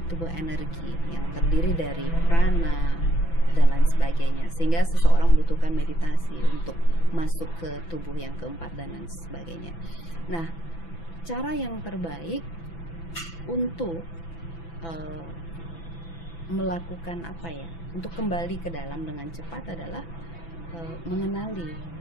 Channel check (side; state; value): right; late; 6.0 ms